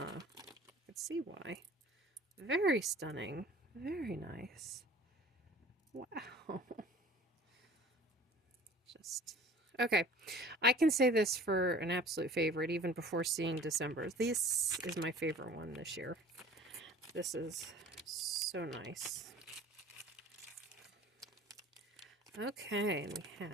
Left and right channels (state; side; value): normal; both; correlation 0.47